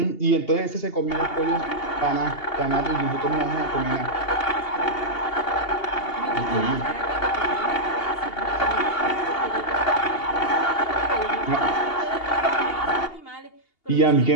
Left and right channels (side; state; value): right; late; 2.8 ms